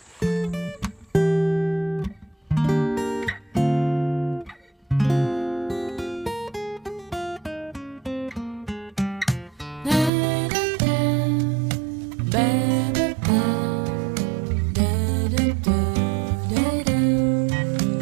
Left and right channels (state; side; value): drops out; left; at 10.1 s